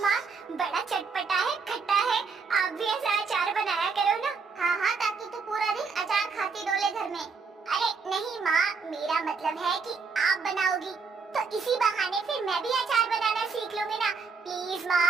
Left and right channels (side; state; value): left; quieter; 5.0 dB